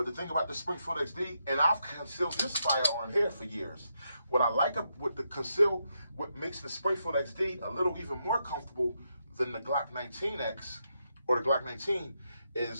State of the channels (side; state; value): both; inverted; correlation -0.82